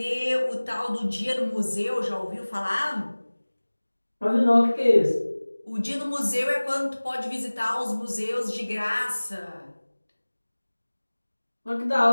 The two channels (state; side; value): inverted; both; correlation -1.00